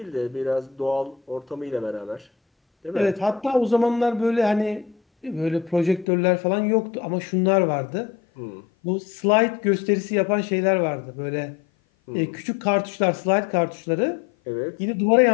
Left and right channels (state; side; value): drops out; right; at 6.1 s